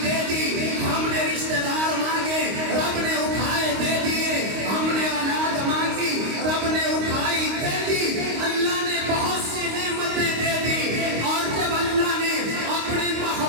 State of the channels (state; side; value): late; left; 25 ms